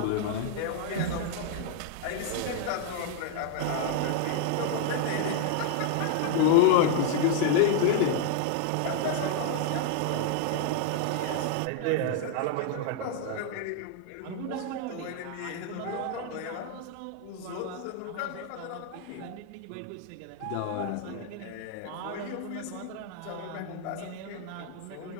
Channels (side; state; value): both; different; correlation 0.00